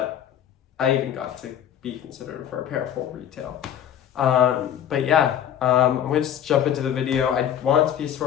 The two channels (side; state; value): right; quieter; 10.1 dB